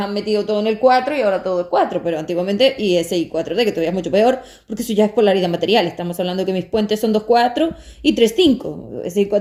metido todo en el 4 y ahora todo es 4, pero antiguamente y ese y 4D, que todavía es mucho peor, porque eso ya es polaridad material. Estamos hablando que mis puentes son 2-4 y 3-5. Ese y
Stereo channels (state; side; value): identical; both; correlation 1.00